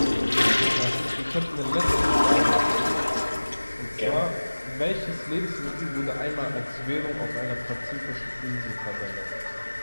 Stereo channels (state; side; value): inverted; both; correlation -1.00